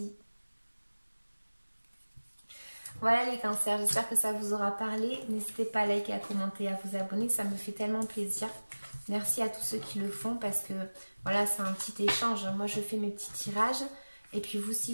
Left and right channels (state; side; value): inverted; both; correlation -1.00